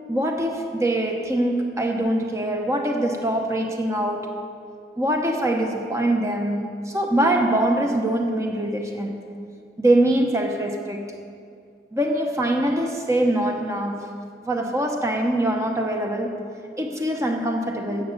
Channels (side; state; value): both; normal; correlation 0.71